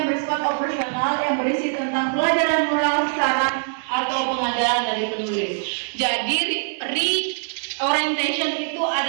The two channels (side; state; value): left; silent; digital silence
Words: bersifat operasional yang berisi tentang pelajaran moral, saran atau pengajaran dari penulis. Jadi reorientation itu